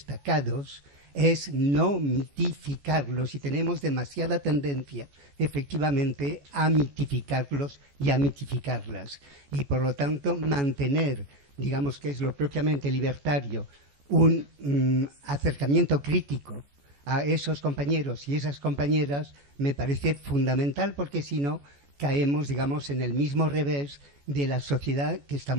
es no mitificarlos, y tenemos demasiada tendencia, efectivamente, a mitificarlos y a mitificarlas. Y, por lo tanto, mantener, digamos, que es lo propiamente libertario, un acercamiento crítico a esos compañeros y esas compañeras me parece fundamental, porque si no caemos, digamos, en el mismo revés de la sociedad que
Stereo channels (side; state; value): left; late; 14 ms